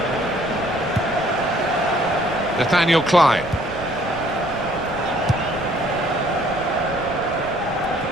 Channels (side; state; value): right; noise; rumble, 16 dB below the sound